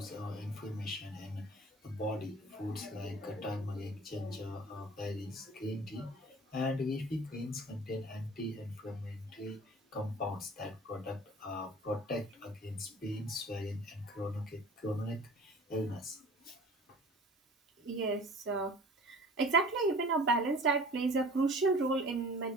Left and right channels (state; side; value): normal; both; correlation 0.44